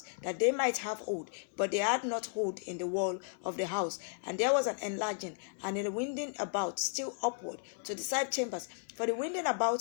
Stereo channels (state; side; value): silent; right; digital silence